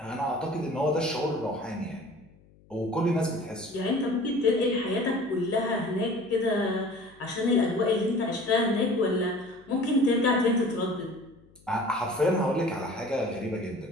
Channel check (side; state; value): left; noise; hum, 28 dB below the sound